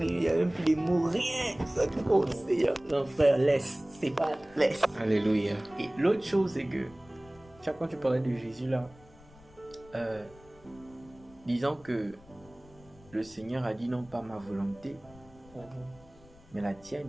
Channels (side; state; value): left; noise; rumble, 24 dB below the sound